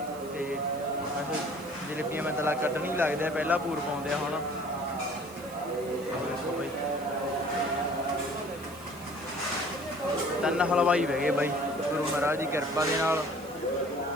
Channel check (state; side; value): noise; right; hiss, 21 dB below the sound